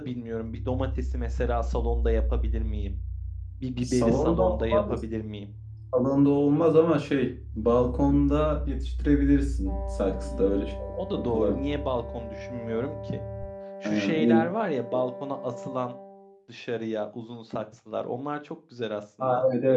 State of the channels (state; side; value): identical; both; correlation 1.00